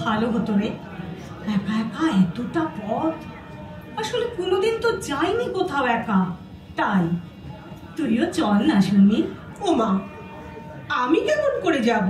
ভালো হতো রে। একা একা এতটা পথ, আসলে কোনোদিন তো যাইনি কোথাও একা, তাই তুইও চল না শুনি। ওমা, আমি কেমন করে যাব?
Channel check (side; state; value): both; identical; correlation 1.00